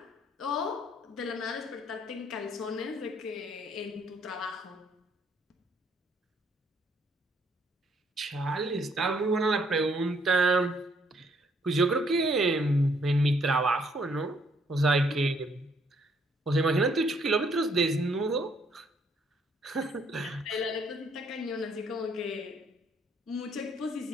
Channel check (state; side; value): normal; both; correlation 0.67